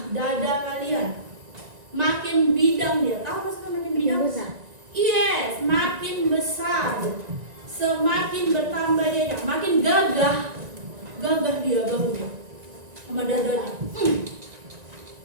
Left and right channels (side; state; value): left; late; 1.9 ms